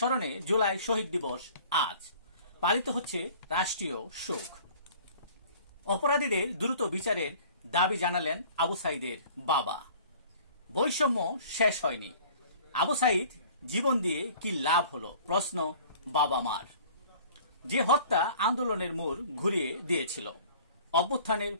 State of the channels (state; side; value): inverted; both; correlation -0.49